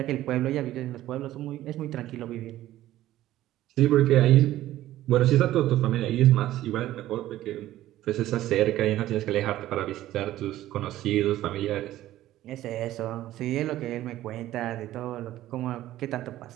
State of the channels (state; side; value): quieter; left; 14.4 dB